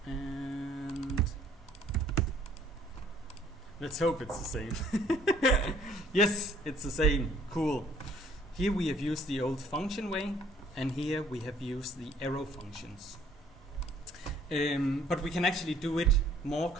And let's hope it's the same. Yes, it's the same. Cool. Here we have used the old function way, and here we have used the arrow functions. But we can actually do it more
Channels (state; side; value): normal; both; correlation 0.60